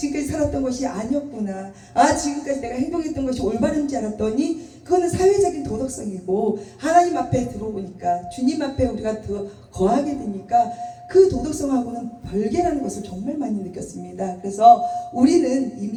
살았던 것이 아니었구나, 지금까지 내가 행동했던 것이 올바른지 알았더니 그거는 사회적인 도덕성이고 하나님 앞에 들어오니까 주님 앞에 우리가 더 거하게 되니까 그 도덕성하고는 별개라는 것을 정말 많이 느꼈습니다. 그래서 우리는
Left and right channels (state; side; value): identical; both; correlation 1.00